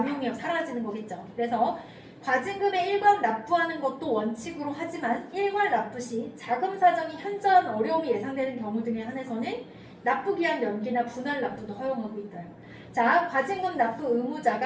사라지는 거겠죠. 그래서 과징금의 일괄 납부하는 것도 원칙으로 하지만 일괄 납부 시 자금 사정이 현저한 어려움이 예상되는 경우 등에 한해서는 납부 기한 연기나 분할 납부도 허용하고 있어요. 자, 과징금 납부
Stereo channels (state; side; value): identical; both; correlation 1.00